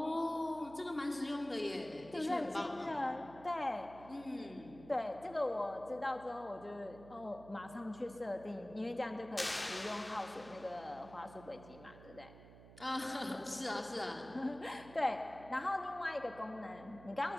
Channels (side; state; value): right; noise; hum, 17 dB below the sound